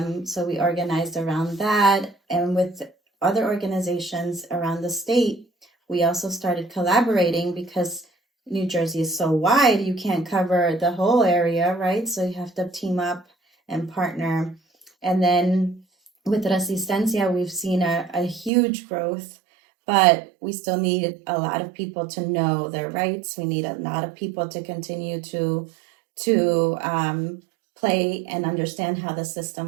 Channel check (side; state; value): left; drops out; at 18.5 s